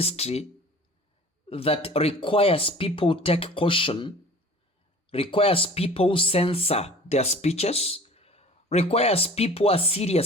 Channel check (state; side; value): normal; both; correlation 0.44